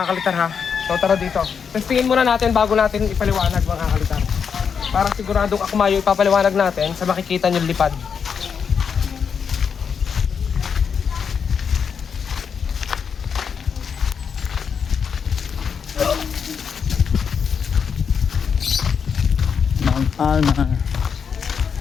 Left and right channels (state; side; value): quieter; right; 6.7 dB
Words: kalitar ha. So tara dito. Testingin muna natin bago natin ipaliwanag mga kalitar. Para siguradong ako mayo ipapaliwanag natin sa makikita nyo lipad. Alma.